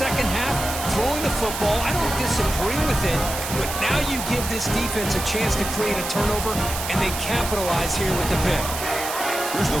half, throwing the football. I don't disagree with it, but now you give this defense a chance to create a turnover, and they capitalize here with the pick. Here's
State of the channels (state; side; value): noise; right; hiss, 6 dB below the sound